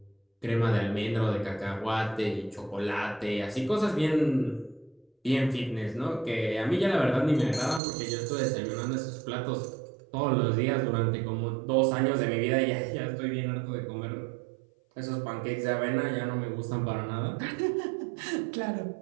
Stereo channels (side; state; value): left; drops out; at 7.8 s